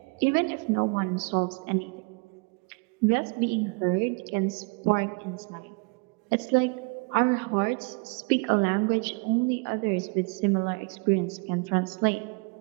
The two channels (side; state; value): left; quieter; 31.2 dB